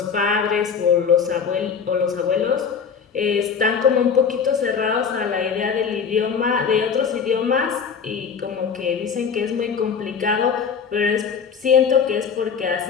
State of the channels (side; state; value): right; quieter; 6.5 dB